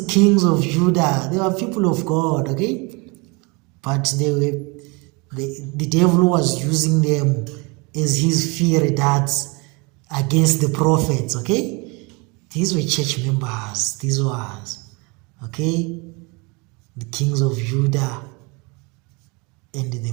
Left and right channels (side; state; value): left; quieter; 28.7 dB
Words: kings of Judah, they were people of God, okay, but the devil was using them as his fiery darts against the prophets. Okay, these were church members. These was, okay, the kings of Judah and the